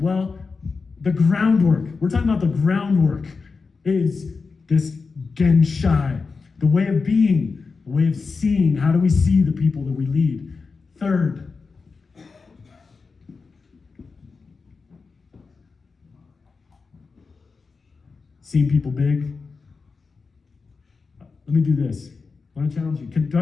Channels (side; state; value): right; quieter; 4.6 dB